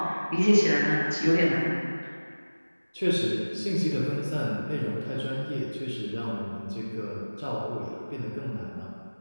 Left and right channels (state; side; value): inverted; both; correlation -1.00